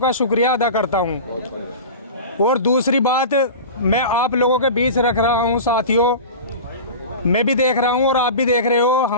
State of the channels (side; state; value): both; inverted; correlation -0.32